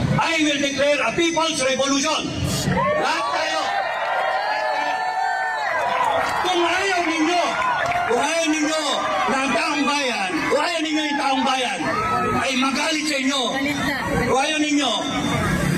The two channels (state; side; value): identical; both; correlation 1.00